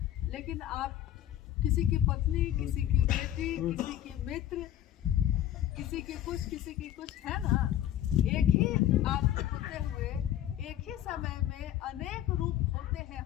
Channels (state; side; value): quieter; right; 12.3 dB